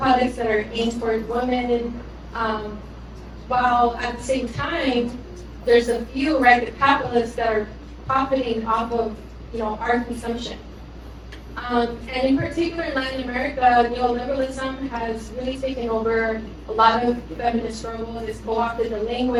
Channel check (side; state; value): both; identical; correlation 1.00